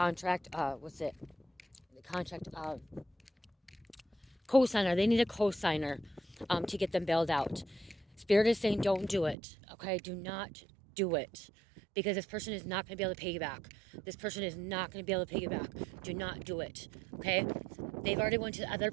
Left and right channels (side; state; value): left; drops out; at 9.3 s